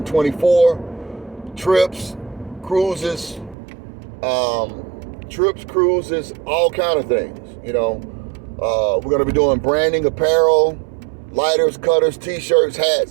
24. Trips, cruises, all kind of things. You know, we're going to be doing branding, apparel, lighters, cutters, t-shirts,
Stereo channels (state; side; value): drops out; left; at 3.6 s